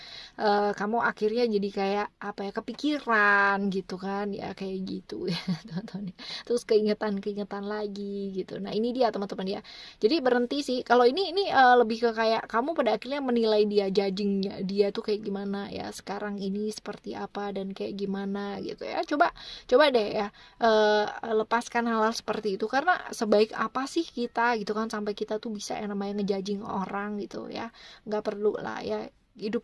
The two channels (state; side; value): identical; both; correlation 1.00